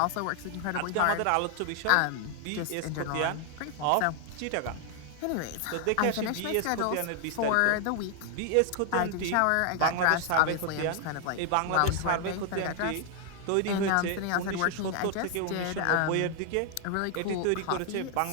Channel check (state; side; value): different; both; correlation 0.00